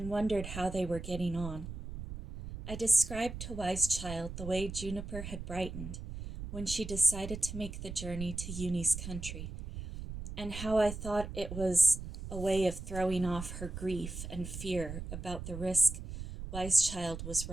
wondered how they were getting on. I described to Wise Child the way Juniper had brightened when she decided to make the journey to Uni's country, and how I thought it was a way of throwing off her grief and fear about the risk Wise Child was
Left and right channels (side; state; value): right; noise; rumble, 9 dB below the sound